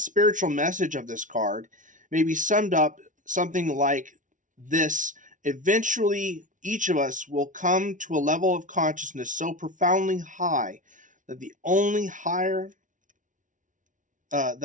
message of this card may be summed up something like this: eventually, each of us will come to a level of consciousness so profoundly high that the only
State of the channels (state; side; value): late; left; 0.37 ms